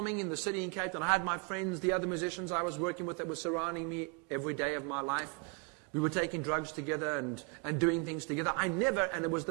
in the city in Cape Town, I had my friends, the other musicians I was working with that were surrounding me every day of my life. We were taking drugs together and doing things together. And it was the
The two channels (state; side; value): quieter; left; 33.1 dB